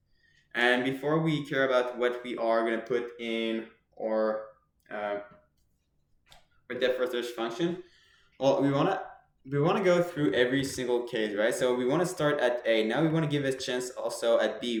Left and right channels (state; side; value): identical; both; correlation 1.00